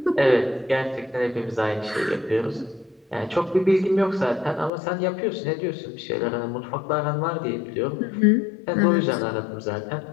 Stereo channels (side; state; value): right; drops out; at 4.7 s